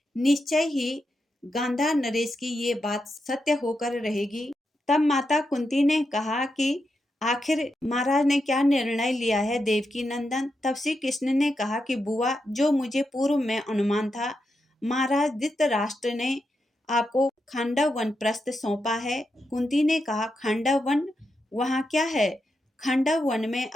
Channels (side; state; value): both; normal; correlation 0.86